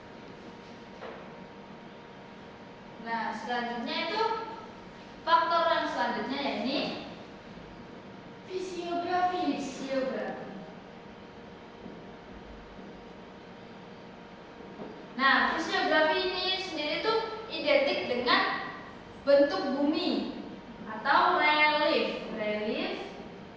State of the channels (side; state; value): both; identical; correlation 1.00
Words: Nah, selanjutnya itu faktor yang selanjutnya yakni fisiografi. Nah, fisiografi ini sendiri itu identik dengan bentuk bumi atau relief